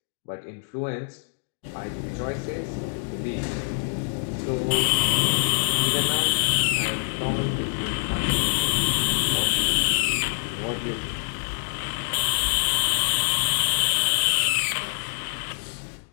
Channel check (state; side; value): silent; right; digital silence